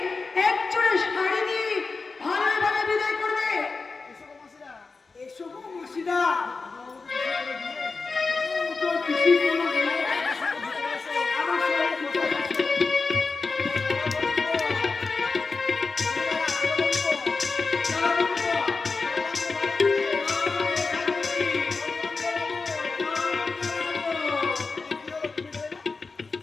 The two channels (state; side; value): quieter; right; 4.2 dB